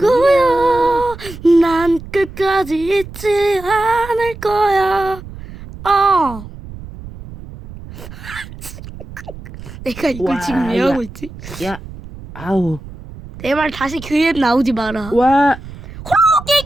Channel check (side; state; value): right; noise; rumble, 14 dB below the sound